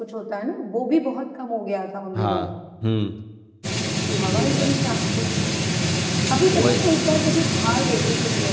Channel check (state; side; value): identical; both; correlation 1.00